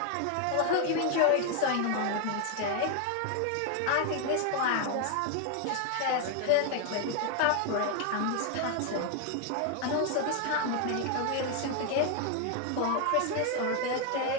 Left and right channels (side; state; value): both; different; correlation 0.01